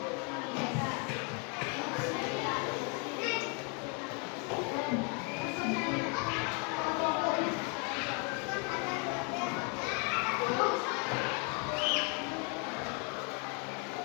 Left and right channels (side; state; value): right; quieter; 33.3 dB